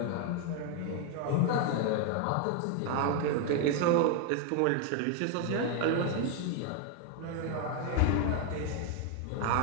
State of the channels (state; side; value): different; both; correlation 0.01